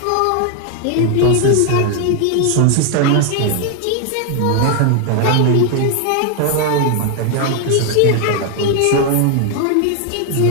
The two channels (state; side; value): different; both; correlation 0.00